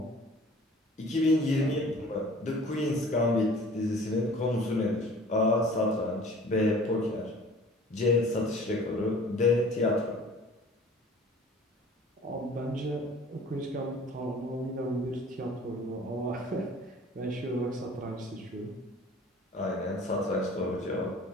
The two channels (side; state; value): both; normal; correlation 0.47